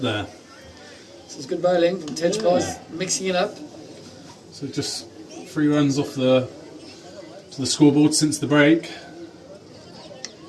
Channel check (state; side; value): identical; both; correlation 1.00